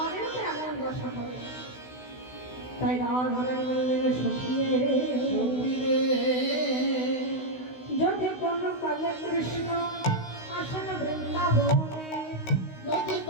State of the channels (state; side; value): late; right; 16 ms